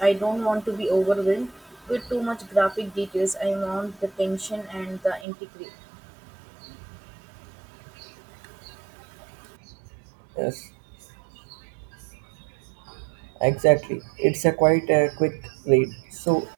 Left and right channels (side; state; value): left; drops out; at 5.2 s